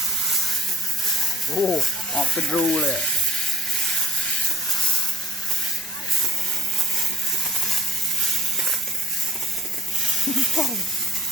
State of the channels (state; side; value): normal; both; correlation 0.54